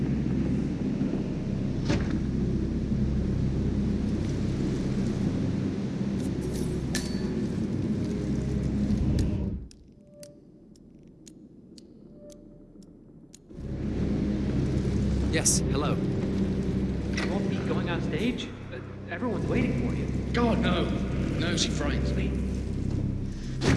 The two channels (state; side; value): identical; both; correlation 1.00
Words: Yes, hello. You won't be going on stage? Everyone's waiting for you. God, no. No, she frightens me.